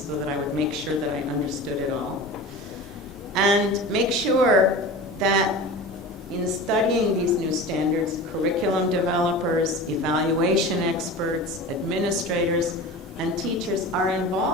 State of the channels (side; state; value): both; normal; correlation 0.33